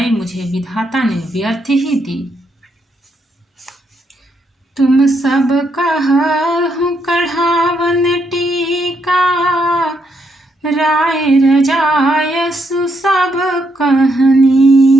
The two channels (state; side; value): normal; both; correlation 0.77